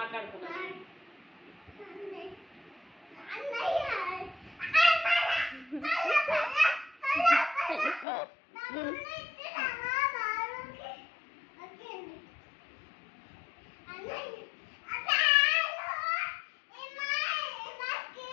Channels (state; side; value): drops out; right; at 8.1 s